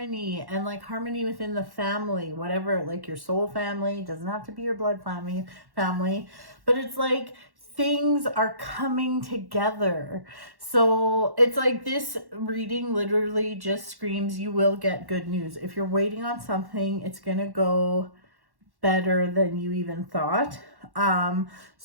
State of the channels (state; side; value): late; left; 1.1 ms